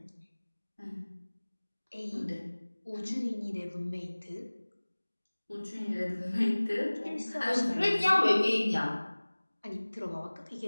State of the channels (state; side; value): inverted; both; correlation -1.00